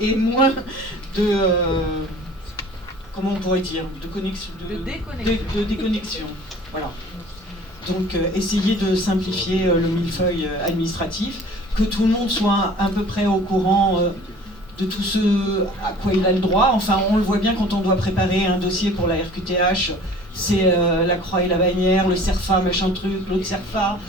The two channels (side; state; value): both; normal; correlation 0.47